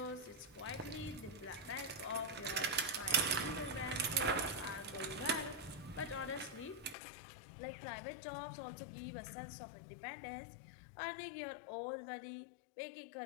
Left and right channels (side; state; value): right; drops out; at 7.0 s